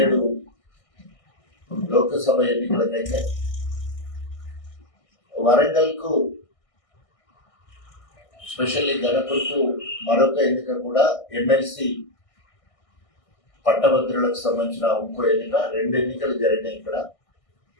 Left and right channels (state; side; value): late; right; 1.6 ms